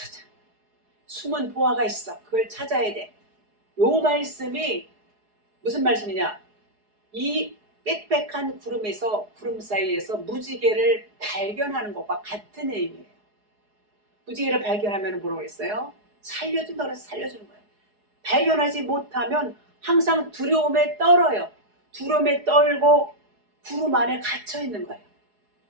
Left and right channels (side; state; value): left; late; 4.8 ms